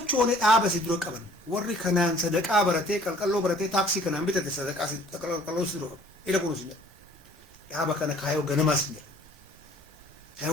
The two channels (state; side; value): normal; both; correlation 0.55